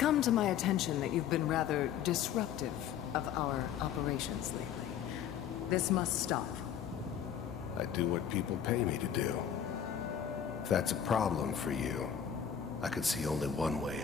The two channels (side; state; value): right; quieter; 8.9 dB